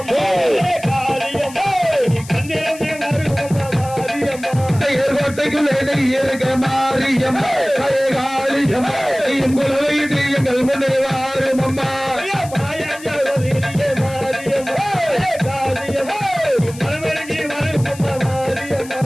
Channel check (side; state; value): left; noise; hiss, 17 dB below the sound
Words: செய்யர் கோட்டைக்குள்ளே நீ இருக்க மாரியம்மா பழகாலியம்மா நீயும் குலவையிட்டு எங்கள் முன்னே வாரும் அம்மா